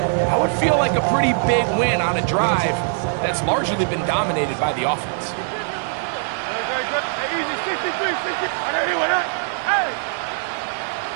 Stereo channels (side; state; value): left; silent; digital silence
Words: would feel like a pretty big win on a drive that's largely been dominated by the offense. Hey, easy, 63, 60. I don't hear what that. Hey!